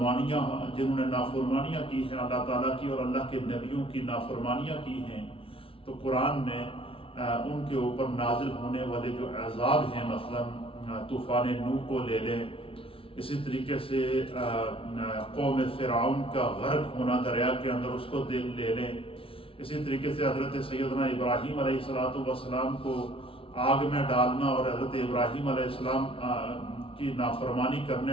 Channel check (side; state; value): right; late; 0.26 ms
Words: نے نافرمانیاں کی ہیں اللہ تعالیٰ کی اور اللہ کے نبیوں کی نافرمانیاں کی ہیں، تو قرآن نے ان کے اوپر نازل ہونے والے جو عذاب ہیں، مثلا طوفان نوح کو لے لیں، اسی طریقے سے قوم فرعون کا غرق ہونا دریا کے اندر اس کو لے لیں، اسی طریقے سے حضرت سیدنا ابراہیم علیہ السلام کو آگ میں ڈالنا اور حضرت ابراہیم علیہ السلام کی نافرمانی